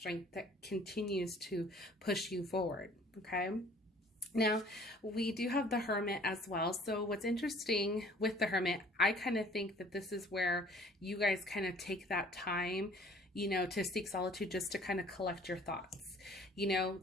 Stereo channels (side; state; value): both; normal; correlation 0.53